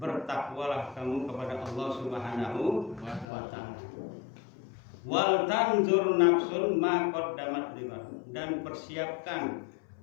kamu kepada Allah Subhanahu wa taala. Wal tanzur nafsun ma qaddamat lighad, dan persiapkan,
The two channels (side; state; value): right; drops out; at 3.2 s